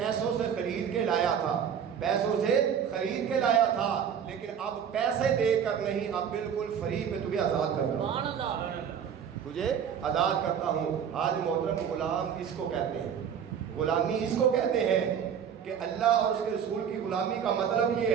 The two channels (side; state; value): left; quieter; 8.0 dB